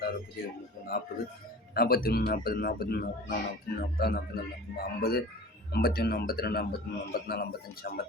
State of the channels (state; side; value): normal; both; correlation 0.39